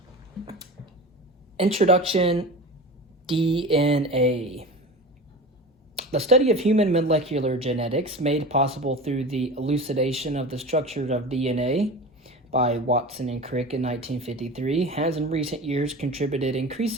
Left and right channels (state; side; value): normal; both; correlation 0.32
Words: Introduction, DNA. The study of human molecular genetics, made possible through the elucidation of the structure of DNA by Watson and Crick in 1953, has in recent years contributed